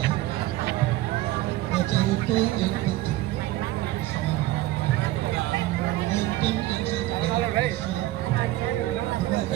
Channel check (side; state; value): left; quieter; 16.3 dB